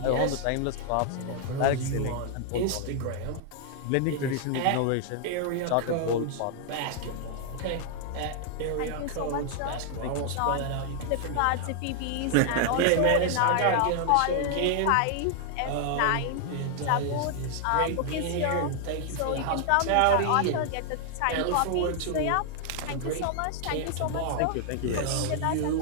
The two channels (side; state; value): both; different; correlation 0.00